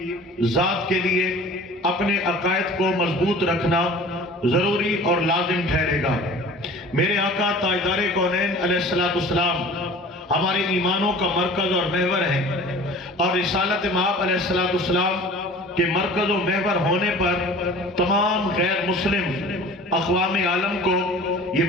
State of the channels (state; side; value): normal; both; correlation 0.43